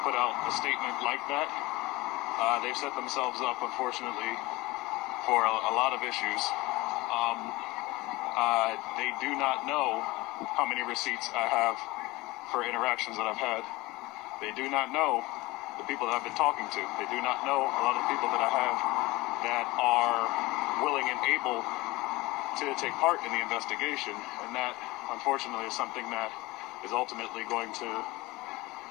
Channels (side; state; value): right; quieter; 21.1 dB